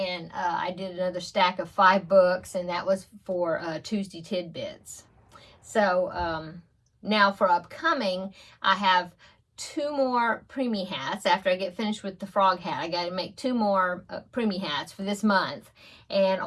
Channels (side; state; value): both; identical; correlation 1.00